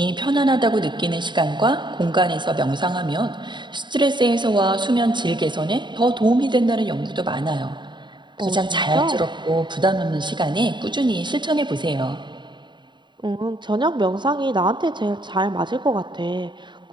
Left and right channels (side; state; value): left; late; 0.22 ms